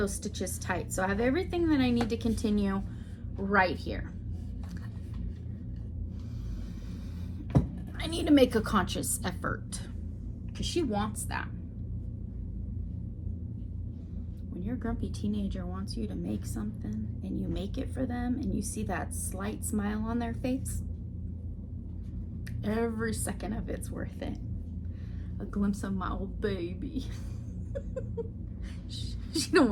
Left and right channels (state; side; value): identical; both; correlation 1.00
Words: stitches tight. So I have everything that I need to continue right here. I need to make a conscious effort because she wants that. When your grumpy teenager wants you to make something and you make it for them and you see that slight smile on their face, every second of it's worth it. A glimpse of my old baby. She don't